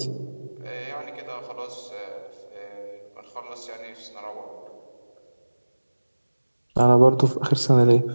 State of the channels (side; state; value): both; inverted; correlation -1.00